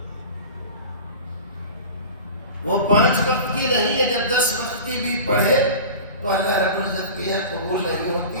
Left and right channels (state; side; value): inverted; both; correlation -0.35